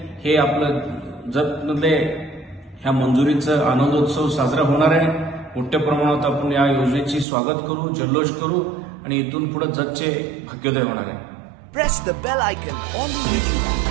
हे आपलं जतमध्ये ह्या मंजुरीचं आनंदोत्सव साजरा होणार आहे। मोठ्या प्रमाणात आपण या योजनेची स्वागत करू, जल्लोष करू आणि इथून पुढे जतचे भाग्योदय होणार आहे। Press the bell icon on the YouTube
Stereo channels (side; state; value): left; drops out; at 7.2 s